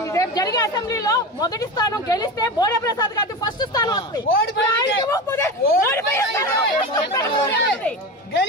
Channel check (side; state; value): both; normal; correlation 0.25